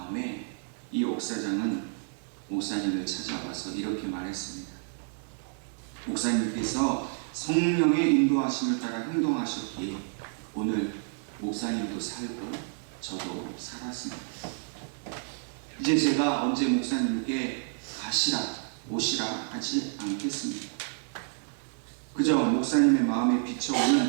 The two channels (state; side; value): silent; left; 58 dB below the other